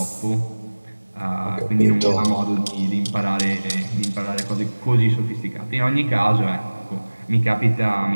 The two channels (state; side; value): inverted; both; correlation -1.00